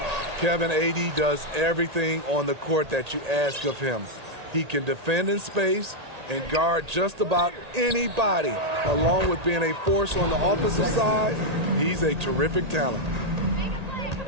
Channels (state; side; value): late; left; 1.8 ms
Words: Kevin, AD does everything on the court that you ask of him. He can defend in space and guard just about anybody. Along with being a force on the offensive side, he's a terrific talent.